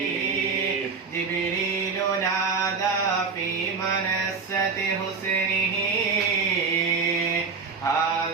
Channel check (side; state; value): left; quieter; 5.0 dB